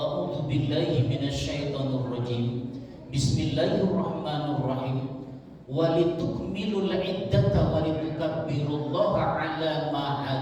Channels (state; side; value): identical; both; correlation 1.00